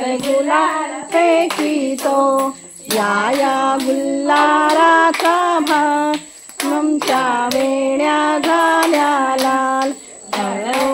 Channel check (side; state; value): both; identical; correlation 1.00